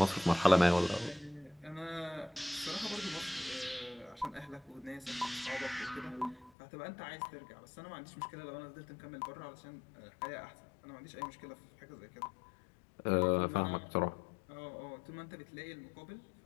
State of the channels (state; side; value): drops out; right; at 6.5 s